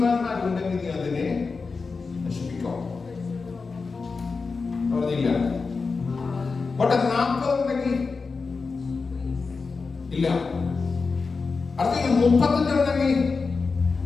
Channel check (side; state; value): right; quieter; 4.5 dB